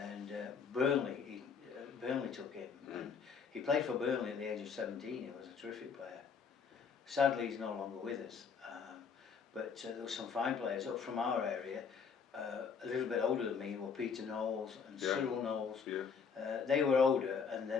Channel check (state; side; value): quieter; right; 6.1 dB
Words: Burnley took him, and he played for Burnley at the age of 17. He was a terrific player. Sadly, he's no longer with us. But there were some fine players up from our area, a little bit older than me, were Peter Knowles and Cyril Knowles. Yeah. They were older, and